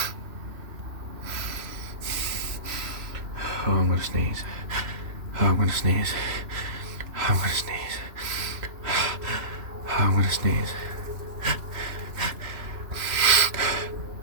Oh, I'm gonna sneeze. Oh, I'm gonna sneeze. Oh, I'm gonna sneeze. Oh, I'm gonna sneeze.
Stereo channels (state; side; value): late; left; 3.0 ms